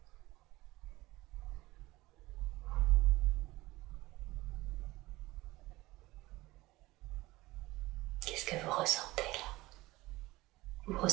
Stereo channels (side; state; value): left; quieter; 19.4 dB